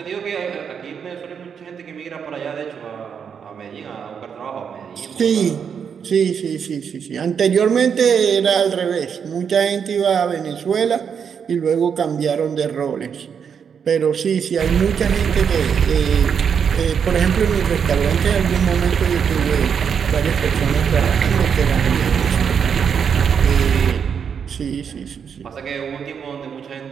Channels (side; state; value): left; quieter; 7.1 dB